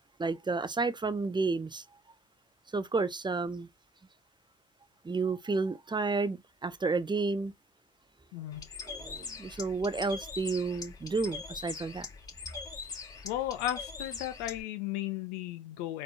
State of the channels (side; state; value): both; normal; correlation 0.55